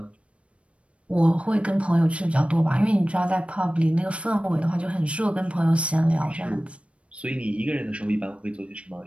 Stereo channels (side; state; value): left; late; 0.061 ms